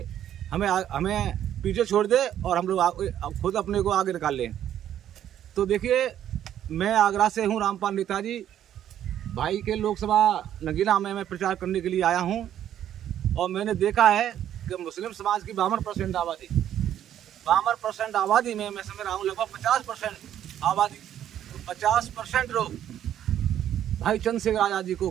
हमें पीछे छोड़ दे और हम लोग खुद अपने को आगे निकाल लें। तो देखिए, मैं आगरा से हूँ, रामपाल नेताजी। भाई के लोकसभा नगीना में मैं प्रचार करने के लिए आया हूँ, और मैंने देखा है कि मुस्लिम समाज की 52% आबादी में मैं समझ रहा हूँ लगभग 50% आबादी, 50% लोग भाई चंद्रशेखर आज़ाद जी को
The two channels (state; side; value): quieter; left; 10.8 dB